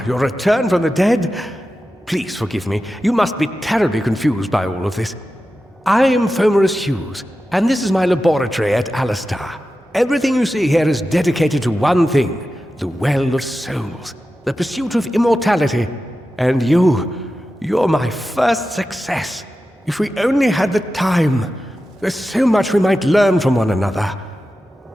your return from the dead. Please forgive me. You must be terribly confused by all of this. I am Fomerus Hughes, and this is my laboratory at Alistar. Everything you see here is dedicated to one thing, the Well of Souls, the pursuit of immortality. And you're my first success. If we only had the time, there's so much we might learn from one another.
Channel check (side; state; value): both; normal; correlation 0.92